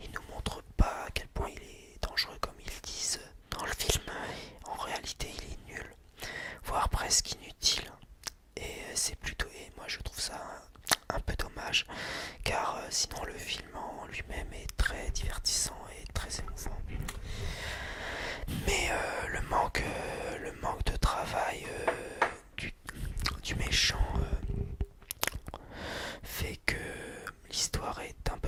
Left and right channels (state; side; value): identical; both; correlation 1.00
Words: nous montre pas à quel point il est dangereux comme ils disent dans le film. En réalité, il est nul, voire presque inutile. Et moi je trouve ça un peu dommage, car sinon le film en lui-même est très divertissant et très émouvant. Mais le manque de travail du méchant fait que l'histoire est un